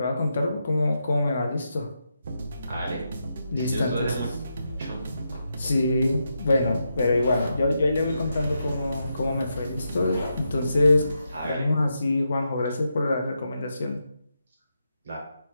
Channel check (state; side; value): inverted; both; correlation -0.85